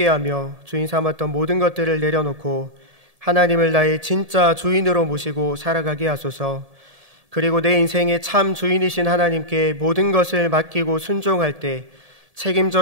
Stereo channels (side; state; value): left; late; 1.7 ms